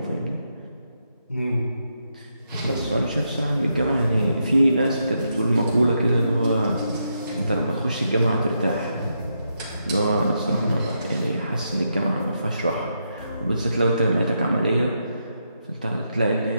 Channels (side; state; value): both; inverted; correlation -0.82